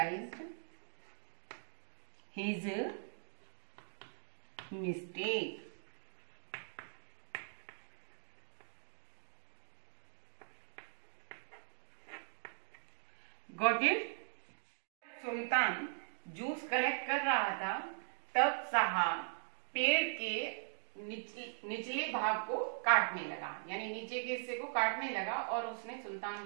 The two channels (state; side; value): silent; left; digital silence